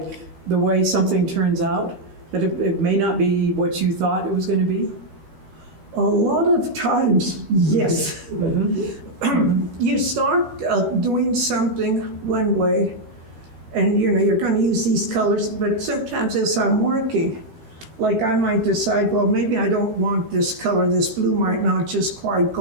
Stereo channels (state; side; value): late; left; 12 ms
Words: the way something turns out? That it may not be what you thought it was going to be? a lot of times, yes. You start doing something one way, and you're going to use these colors, but sometimes as I'm working, like I might decide, well, maybe I don't want this color, this blue might not just quite